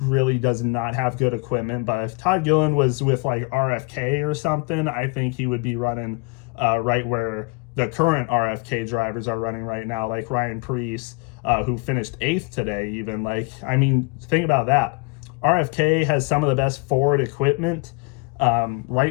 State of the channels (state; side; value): quieter; right; 29.6 dB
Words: does not have good equipment. But if Todd Gilliland was with like RFK or something, I think he would be running right where the current RFK drivers are running right now, like Ryan Preece, who finished 8th today even. Think about that. RFK has some of the best forward equipment